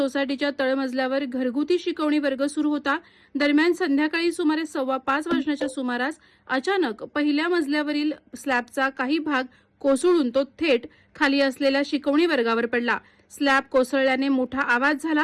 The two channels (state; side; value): identical; both; correlation 1.00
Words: तळमजल्यावर घरगुती शिकवणी वर्ग सुरू होता। दरम्यान संध्याकाळी सुमारे 4:15 वाजण्याच्या सुमारास अचानक पहिल्या मजल्यावरील स्लॅबचा काही भाग कोसळून तो थेट खाली असलेल्या शिकवणी वर्गावर पडला। स्लॅब कोसळल्याने मोठा आवाज